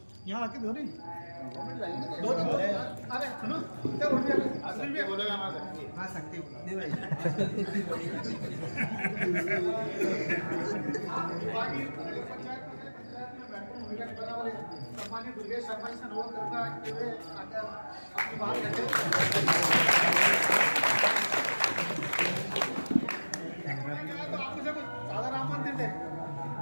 यहाँ आके धो रही दो अरे सुनो क्या बोलेगा हाँ सकती सम्मानित दुर्गेश शर्मा जी से अनुरोध करूंगा कि वे आकर अपनी बात रखें। तो आप मुझे कुछ साधारण आमंत्रित है।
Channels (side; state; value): both; inverted; correlation -1.00